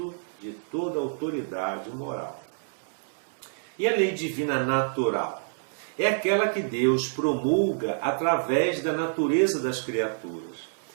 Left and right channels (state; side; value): silent; left; digital silence